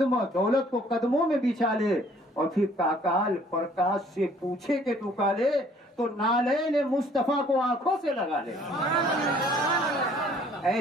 दौलत को कदमों में बिछा ले और फिर काकाल प्रकाश से पूछे कि तू काले तो नाले मुस्तफा को आंखों से लगा ले।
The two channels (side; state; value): both; normal; correlation 0.58